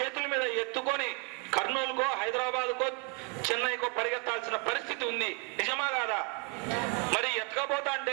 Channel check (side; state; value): left; quieter; 33.8 dB